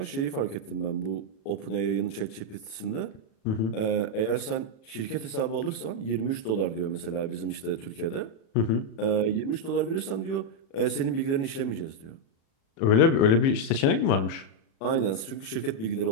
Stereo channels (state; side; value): late; right; 36 ms